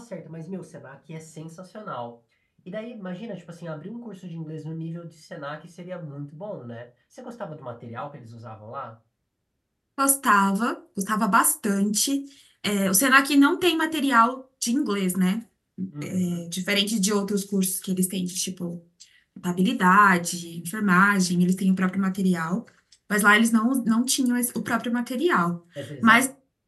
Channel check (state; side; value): identical; both; correlation 1.00